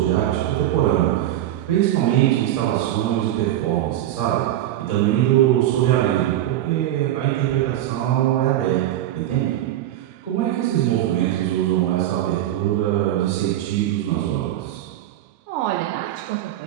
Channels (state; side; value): quieter; left; 13.0 dB